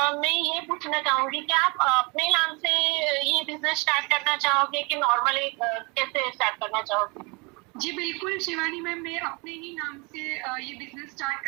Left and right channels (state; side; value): quieter; left; 29.2 dB